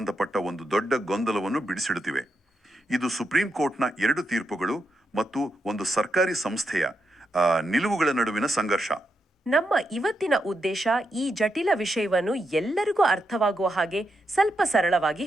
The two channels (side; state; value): both; normal; correlation 0.84